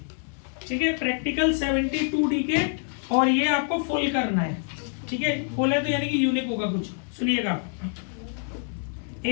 ठीक है, प्रैक्टिकल 72 डीके, और ये आपको फुल करना है। ठीक है, फुल है तो यानी कि यूनिक होगा कुछ। सुनिएगा,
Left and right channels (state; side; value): silent; right; 56 dB below the other